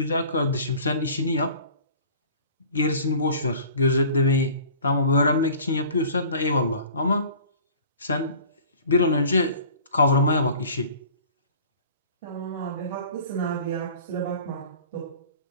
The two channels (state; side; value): inverted; both; correlation -0.46